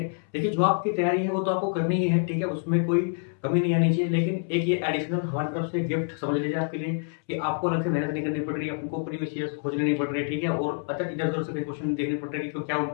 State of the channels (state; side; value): silent; right; 60 dB below the other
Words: देखिए जो आपकी तैयारी है वो तो आपको करनी ही है, ठीक है, उसमें कोई कमी नहीं आनी चाहिए, लेकिन एक ये एडिशनल हमारी तरफ से गिफ्ट समझ लीजिए आपके लिए कि आपको अलग से मेहनत नहीं करनी पड़ रही है, आपको प्रीवियस ईयर्स खोजने नहीं पड़ रही है। ठीक है, और अच्छा इधर उधर से क्वेश्चन देखने पड़ रहे हैं कि क्या